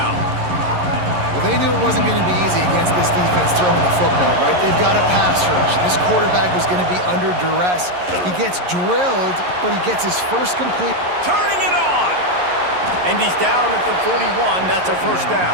Well, they knew it wasn't going to be easy against this defense throwing the football, right? They've got a pass rush. This quarterback was going to be under duress. He gets drilled, but he gets his first complete. Turning it on! And he's down at the 41. That's a first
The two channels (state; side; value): late; left; 11 ms